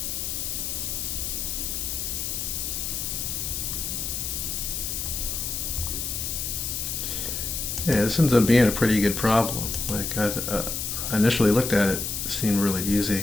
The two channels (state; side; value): noise; left; hiss, 3 dB below the sound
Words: Yeah, this ends up being a pretty good problem. Like I initially looked at it, it seemed really